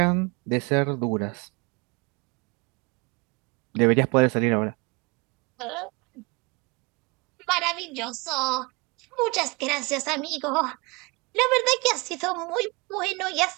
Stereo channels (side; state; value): left; quieter; 27.9 dB